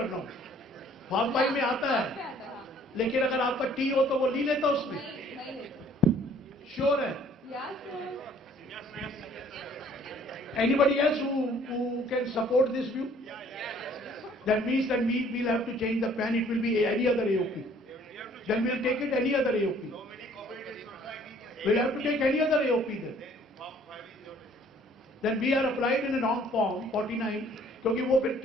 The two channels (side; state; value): both; normal; correlation 0.57